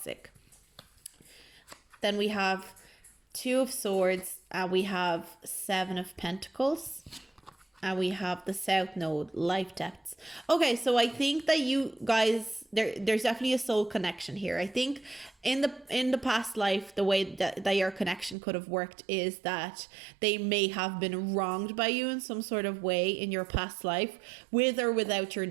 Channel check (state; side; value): drops out; left; at 18.4 s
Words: Then we have 2 of Swords, and we have 7 of Pentacles, and we have the South Node, life depths. Okay, so I think that you guys, there's definitely a soul connection here. I think in the past life, the way that your connection could have worked is that they may have been wronged by you in some sort of way in your past life, with or without your